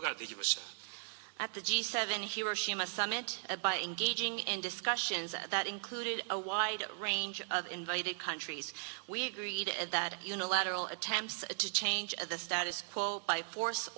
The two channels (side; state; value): left; silent; 53 dB below the other